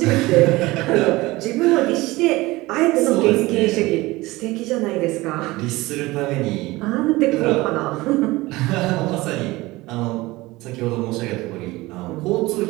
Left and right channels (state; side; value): quieter; left; 20.3 dB